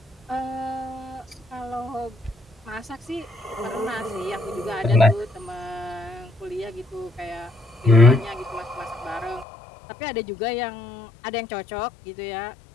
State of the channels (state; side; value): drops out; right; at 9.5 s